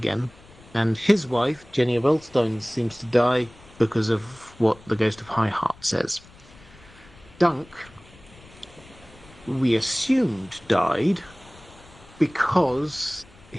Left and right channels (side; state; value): left; noise; rumble, 24 dB below the sound